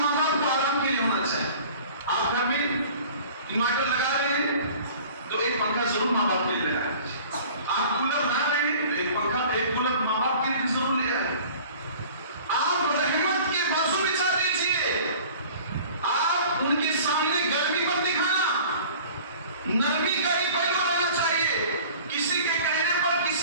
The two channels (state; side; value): inverted; both; correlation -0.45